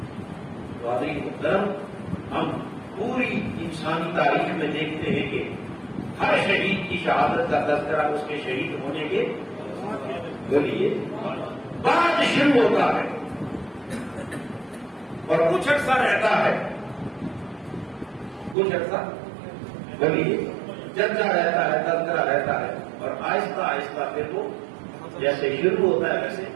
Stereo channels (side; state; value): left; drops out; at 18.6 s